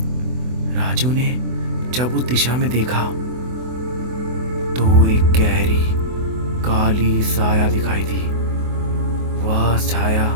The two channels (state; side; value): late; left; 24 ms